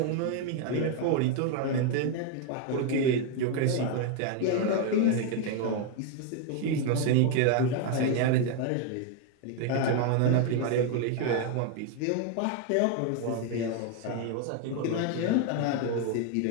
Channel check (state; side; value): different; both; correlation 0.01